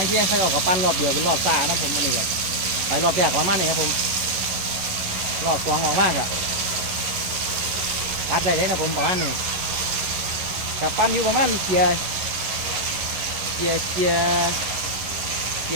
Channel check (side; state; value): left; late; 11 ms